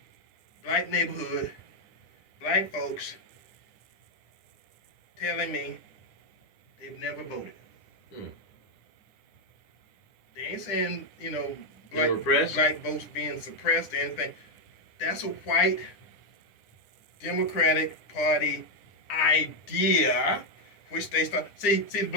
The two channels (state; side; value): late; right; 9.8 ms